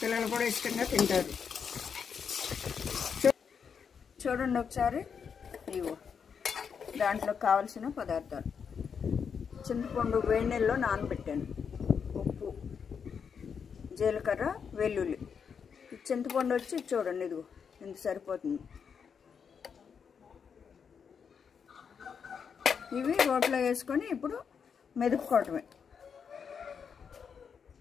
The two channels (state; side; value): quieter; right; 6.6 dB